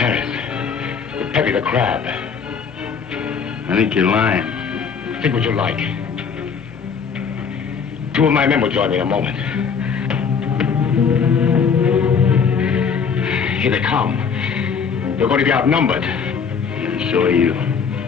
With Peppy the Crab. I think you're lying. Think what you like. 2 of my men will join me in a moment. Here they come. They're going to be outnumbered. And so are you.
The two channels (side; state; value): right; quieter; 6.2 dB